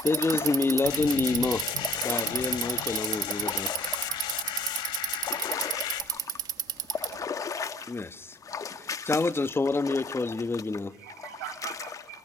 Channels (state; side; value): normal; both; correlation 0.58